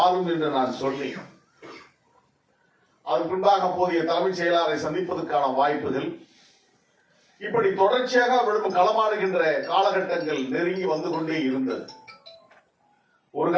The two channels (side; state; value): both; identical; correlation 1.00